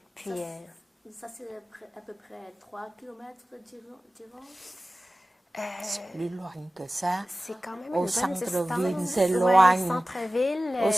Puis, ça c'est à peu près 3 kilomètres d'Iran. C'est plus loin que ça. C'est quand même au une bonne centre-ville, distance. c'est Ouais, loin. centre-ville. Au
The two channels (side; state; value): both; normal; correlation 0.96